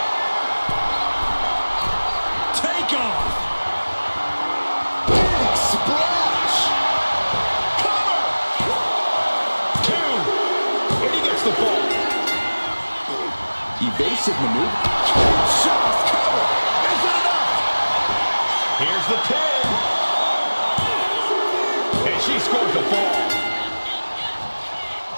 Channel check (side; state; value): both; inverted; correlation -1.00